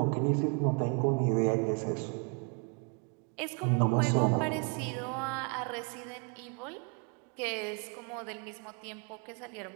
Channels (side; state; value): left; quieter; 35.1 dB